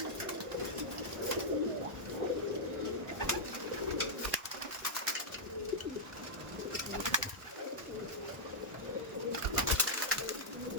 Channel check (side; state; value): left; late; 1.1 ms